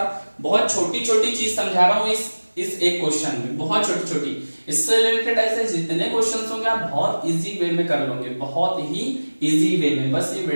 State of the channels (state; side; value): inverted; both; correlation -1.00